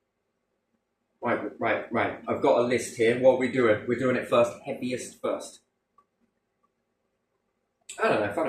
Right. I've got a list here. What are we doing? We're doing it first. Heaviest first. I don't know. I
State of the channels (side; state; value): both; identical; correlation 1.00